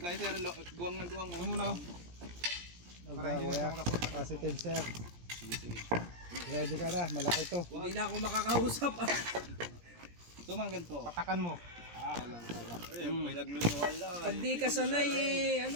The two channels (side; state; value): left; late; 17 ms